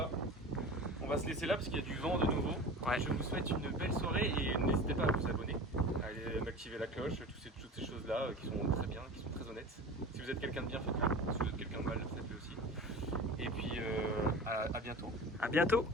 On va se laisser là parce qu'il y a du vent de nouveau. Ouais. Je vous souhaite une belle soirée et n'hésitez pas à vous abonner, à aller activer la cloche, toutes ces choses-là qui sont très bien, qui sont très honnêtes. Si vous êtes quelqu'un de bien, faites-le. Si vous êtes quelqu'un de mal, faites-le aussi. Et puis à bientôt. À bientôt.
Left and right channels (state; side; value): normal; both; correlation 0.35